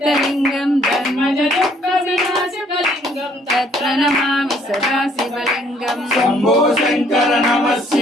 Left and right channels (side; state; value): both; normal; correlation 0.63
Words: धर्मजदुःखविनाशकलिङ्गं तत्र नमामि सदा शिवलिङ्गं शंभो शंकर नमः